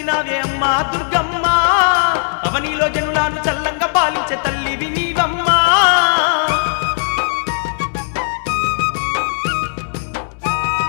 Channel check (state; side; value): silent; right; digital silence